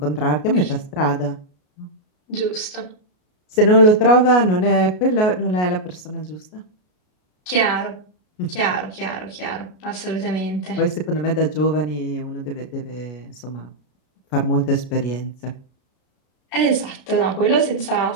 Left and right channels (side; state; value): right; late; 33 ms